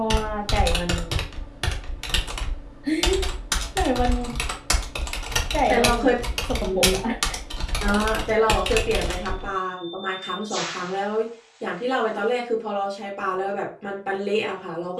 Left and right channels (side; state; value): both; identical; correlation 1.00